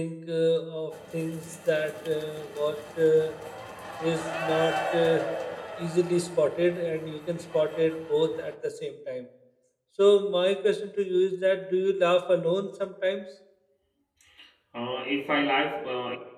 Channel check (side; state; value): both; identical; correlation 1.00